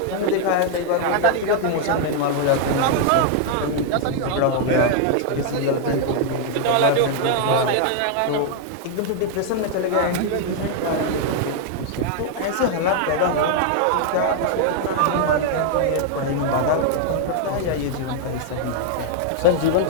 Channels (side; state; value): both; different; correlation 0.00